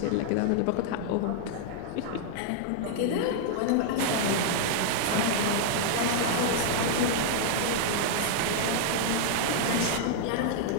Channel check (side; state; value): both; different; correlation -0.01